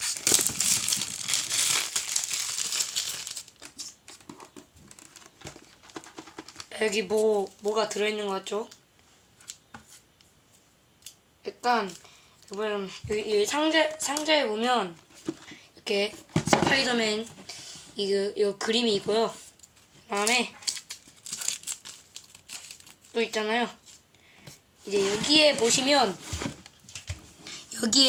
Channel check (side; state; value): both; identical; correlation 1.00